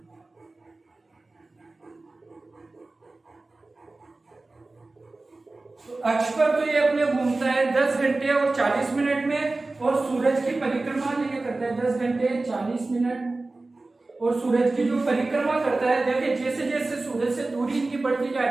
तो अक्ष पर तो ये अपने घूमता है 10 घंटे और 40 मिनट में, और सूरज की परिक्रमा ये करता है 10 घंटे 40 मिनट, और सूरज की जो परिक्रमा करता है, देखिए जैसे जैसे सूरज से दूरी इनकी बढ़ती जा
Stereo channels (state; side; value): quieter; left; 3.2 dB